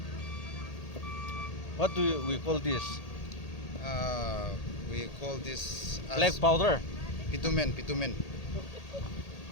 What do we call this? We call this as Black powder. bitumen.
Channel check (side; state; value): right; late; 1.8 ms